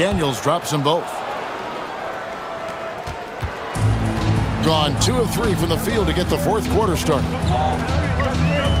drops them both. Gone 2 of 3 from the field to get the fourth quarter started.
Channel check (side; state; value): both; identical; correlation 1.00